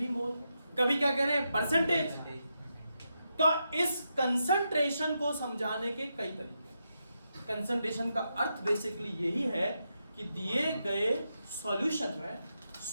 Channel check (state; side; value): inverted; both; correlation -0.85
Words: मोल। कभी क्या कह रहे हैं परसेंटेज। तो इस कंसंट्रेशन को समझाने के कई तरीके। कंसंट्रेशन का अर्थ बेसिकली यही है कि दिए गए सॉल्यूशन में